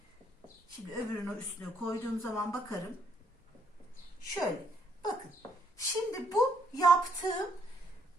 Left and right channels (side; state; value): both; normal; correlation 0.71